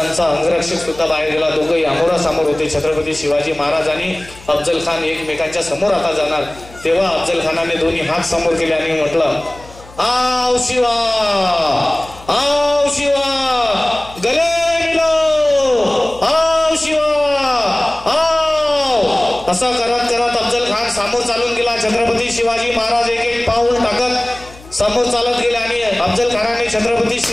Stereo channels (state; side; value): noise; left; hum, 21 dB below the sound